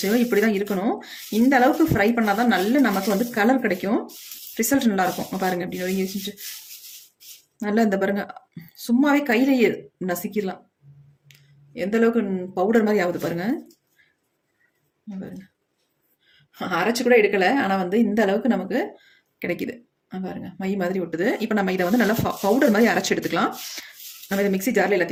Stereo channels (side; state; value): both; identical; correlation 1.00